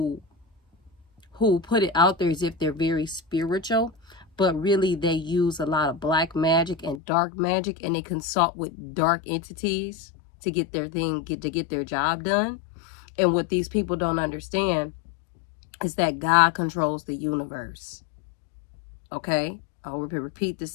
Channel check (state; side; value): drops out; right; at 7.0 s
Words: put it out there as if they're very spiritual, but really they use a lot of black magic and dark magic, and they consult with dark entities to get their get their job done. And what these people don't understand is that God controls the universe. Okay? I'll repeat